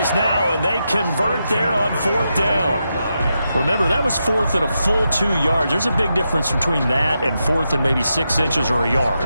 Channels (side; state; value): both; inverted; correlation -0.86